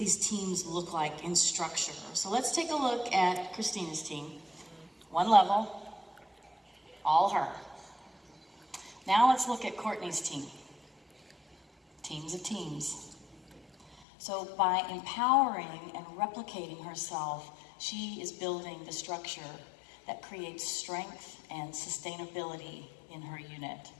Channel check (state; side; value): drops out; right; at 14.1 s